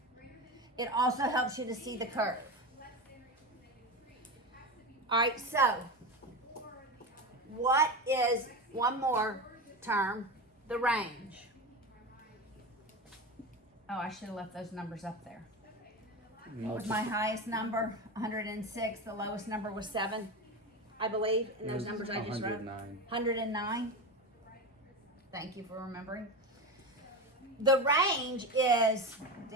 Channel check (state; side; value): normal; both; correlation 0.21